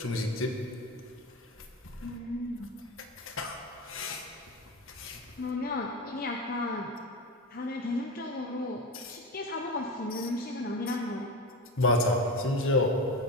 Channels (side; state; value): both; normal; correlation 0.23